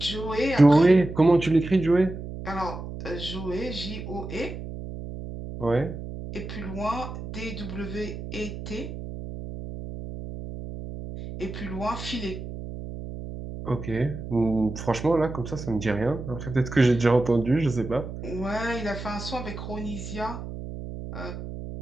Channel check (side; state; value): right; noise; hum, 9 dB below the sound